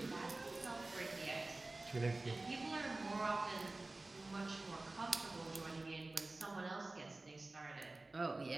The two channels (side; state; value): left; quieter; 3.0 dB